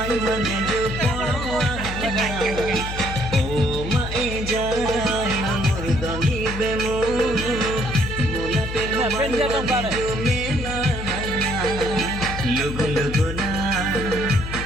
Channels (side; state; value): left; noise; hum, 7 dB below the sound